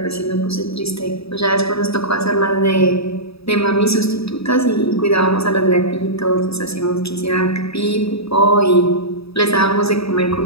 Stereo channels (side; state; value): right; late; 0.77 ms